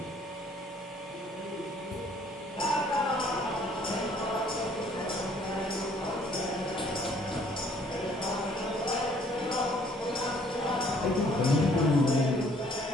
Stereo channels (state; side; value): normal; both; correlation 0.61